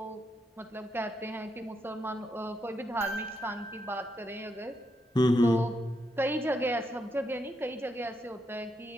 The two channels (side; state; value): both; normal; correlation 0.81